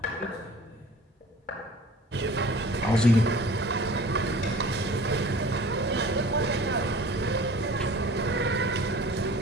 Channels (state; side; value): normal; both; correlation 0.45